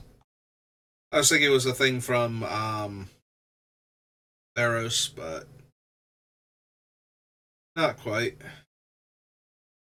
I was thinking it was a thing from Theros, but not quite.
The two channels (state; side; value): identical; both; correlation 1.00